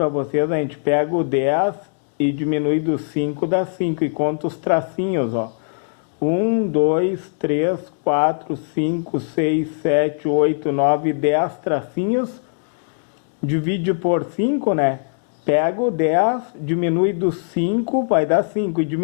vocês, a gente pega o 10 e diminui do 5, dá 5 e conta os tracinhos, ó. 1, 2, 3, 4, 5, 6, 7, 8, 9, 10 tracinhos. Divide por 5, né? Pega o 10, diminui do 5, vai dar 5. E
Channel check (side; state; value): right; silent; 65 dB below the other